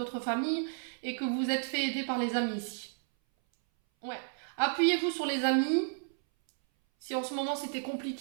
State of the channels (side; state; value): left; silent; 56 dB below the other